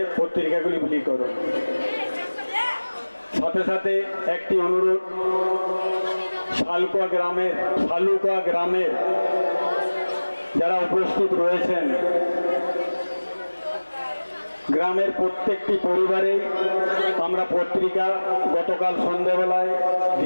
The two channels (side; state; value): both; inverted; correlation -1.00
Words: পত্রিকাগুলি বিলি করো। সাথে সাথে একটি অনুরোধ, শালকুয়া গ্রামের যারা উপস্থিত রয়েছেন, গ্রামের প্রত্যেকটি পরিবারেই আমরা পত্রিকা গতকাল সন্ধ্যাবেলায়